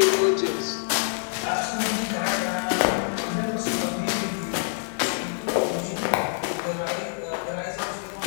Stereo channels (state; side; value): silent; right; digital silence